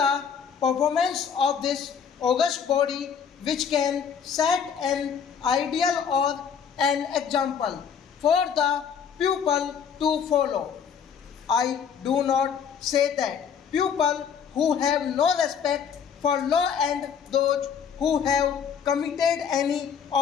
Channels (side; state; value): right; quieter; 7.2 dB